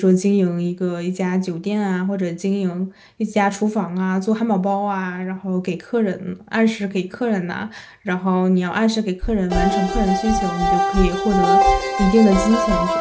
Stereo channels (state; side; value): identical; both; correlation 1.00